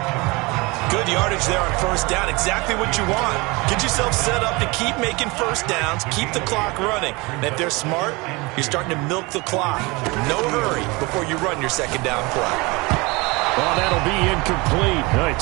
Good yardage there on 1st down. Exactly what you want. Get yourself set up to keep making 1st downs, keep the clock running. And if they're smart, you're starting to milk the clock. No hurry before you run your 2nd down play. Well, that'll be incomplete. Well, he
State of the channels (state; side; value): quieter; left; 25.0 dB